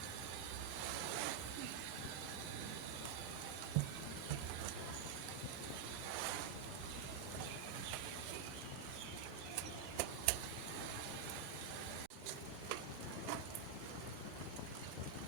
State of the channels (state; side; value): quieter; left; 6.4 dB